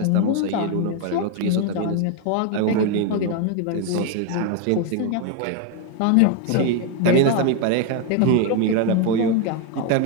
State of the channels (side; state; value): both; different; correlation 0.01